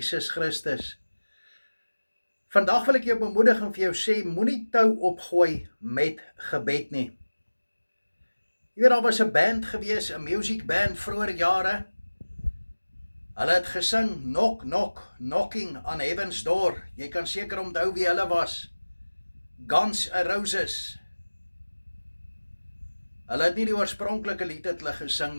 Christus. Vandag wil ek jou bemoedig en vir jou sê, moenie tou opgooi met gebed nie. Jy weet, daar was 'n band gewees, 'n music band vroeër jare. Hulle het gesing, knock, knock, knocking on heaven's door. Jy kan seker onthou wie hulle was. Guns N' Roses. Hulle het nie die oorspronklike lied het hulle gesing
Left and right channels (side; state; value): both; inverted; correlation -1.00